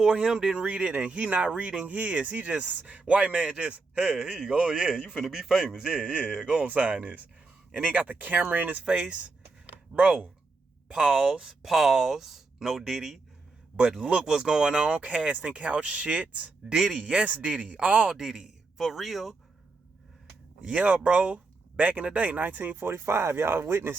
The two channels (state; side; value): quieter; left; 3.8 dB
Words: him didn't read it, and he not reading his. He just, white man just, hey, here you go. Yeah, you finna be famous. Yeah, go on, sign this. And he got the camera in his face. Bro, pause, no Diddy. But look what's going on, casting couch shit. Diddy, yes Diddy, all Diddy, for real. Yeah, bro, back in the day, 1945, y'all